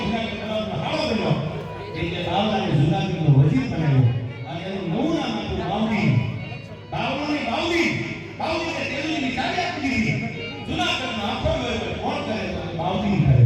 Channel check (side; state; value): both; identical; correlation 1.00